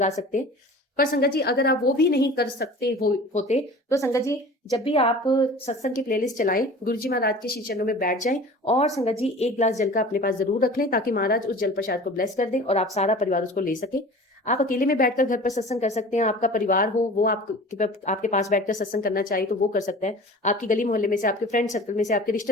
सकते हैं। पर संगत जी अगर आप वो भी नहीं कर सकते होते तो संगत जी जब भी आप सत्संग की प्लेलिस्ट चलाएं, गुरु जी महाराज के श्री चरणों में बैठ जाएं, और संगत जी 1 गिलास जल का अपने पास जरूर रख लें, ताकि महाराज उस जल प्रसाद को ब्लेस कर दें और आप सारा परिवार उसको ले सके। आप अकेले में बैठकर घर पर सत्संग कर सकते हैं, आपका परिवार हो वो आपके पास बैठकर सत्संग करना चाहिए तो वो कर सकता है, आपकी गली मोहल्ले में से, आपके फ्रेंड सर्कल में से, आपके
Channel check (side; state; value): both; normal; correlation 0.41